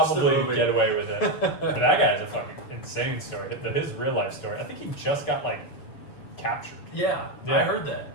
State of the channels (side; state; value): right; late; 7.0 ms